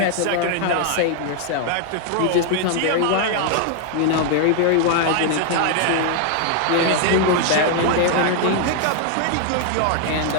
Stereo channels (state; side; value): different; both; correlation 0.00